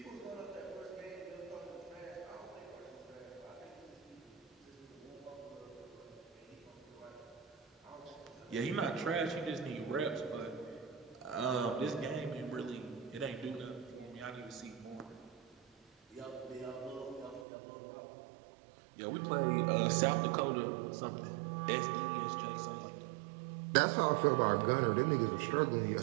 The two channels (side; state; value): left; drops out; at 17.4 s